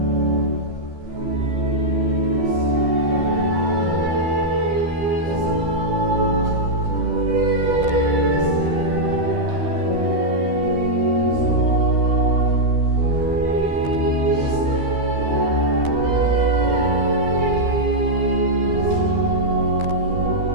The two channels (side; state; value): left; late; 13 ms